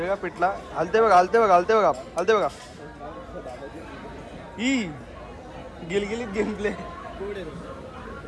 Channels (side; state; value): both; identical; correlation 1.00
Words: का पिठला हलते बघा, हलते बघा, हलते बघा, हलते बघा. ही गिलगिलीत गेमप्ले.